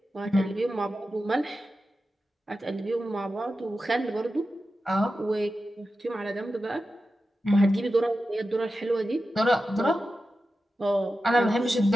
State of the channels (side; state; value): both; normal; correlation 0.92